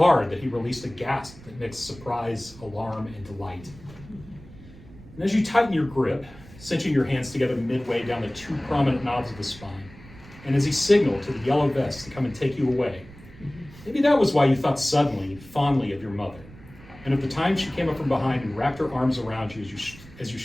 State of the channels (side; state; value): right; noise; rumble, 20 dB below the sound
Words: that he released a gasp that mixed surprise, alarm, and delight. And as you tighten your grip, cinching your hands together midway down the two prominent knobs of the spine, and as he signaled to the yellow vest to come and take you away, maybe that was why you thought suddenly, fondly of your mother, and of the time she came up from behind and wrapped her arms around you as you